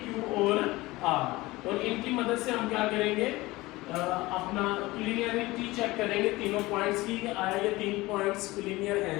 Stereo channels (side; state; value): right; quieter; 20.2 dB